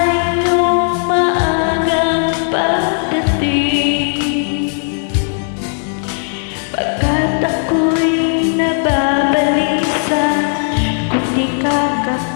iyong maagang pagdating. Pagkat ako'y nababalisa kung di ka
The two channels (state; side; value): silent; right; 58 dB below the other